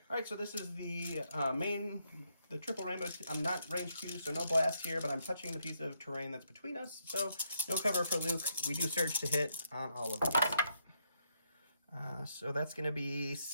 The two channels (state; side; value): inverted; both; correlation -0.77